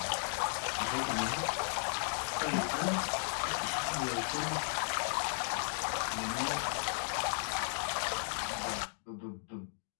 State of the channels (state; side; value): silent; right; digital silence